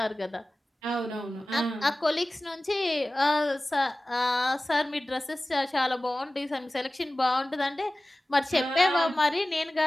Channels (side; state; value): both; normal; correlation 0.97